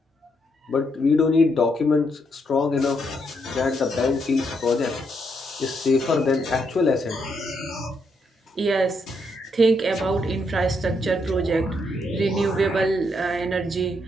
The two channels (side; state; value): both; normal; correlation 0.77